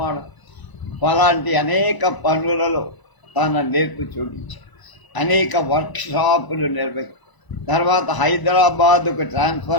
అలాంటి అనేక పనులలో తన నేర్పు చూపించాడు. అనేక వర్క్షాపులు నిర్వహించారు. తర్వాత హైదరాబాదుకు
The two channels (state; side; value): late; right; 1.0 ms